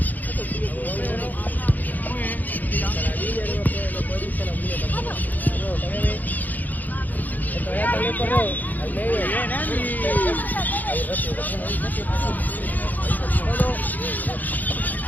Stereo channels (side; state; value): right; late; 0.083 ms